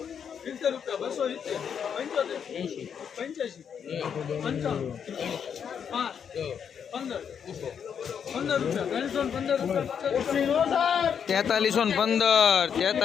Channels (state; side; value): quieter; right; 7.6 dB